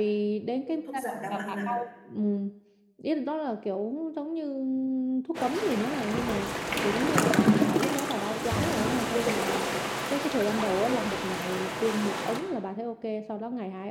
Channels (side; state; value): both; identical; correlation 1.00